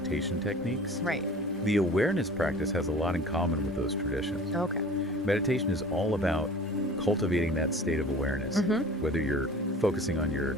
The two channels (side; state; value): both; normal; correlation 0.43